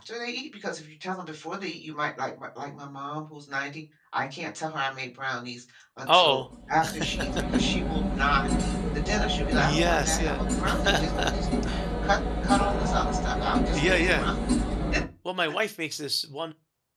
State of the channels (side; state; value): both; identical; correlation 1.00